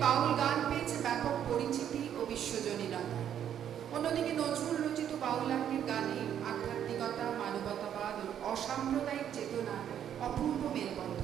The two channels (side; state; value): left; quieter; 9.7 dB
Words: বাউল গান পেয়েছে ব্যাপক পরিচিতি ও বিশ্বজনীনতা। অন্যদিকে নজরুল রচিত বাউলাঙ্গের গানে আধ্যাত্মিকতা, মানবতাবাদ ও অসাম্প্রদায়িক চেতনা অপূর্ব